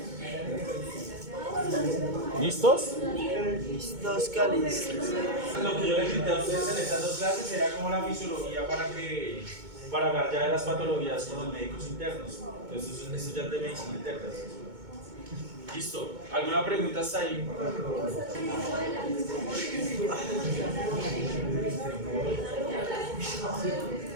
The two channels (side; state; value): left; late; 2.2 ms